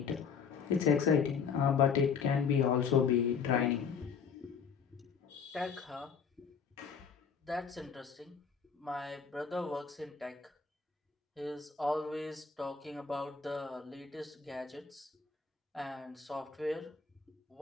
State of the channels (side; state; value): right; quieter; 6.2 dB